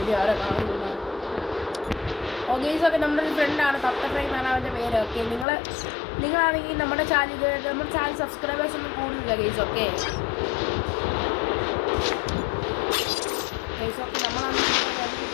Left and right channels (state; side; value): drops out; right; at 5.5 s